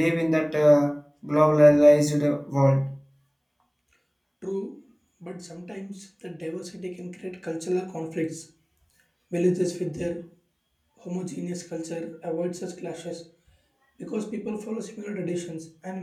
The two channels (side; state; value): both; identical; correlation 1.00